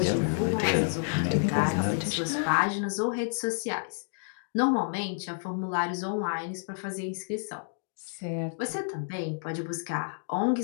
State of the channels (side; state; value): right; silent; digital silence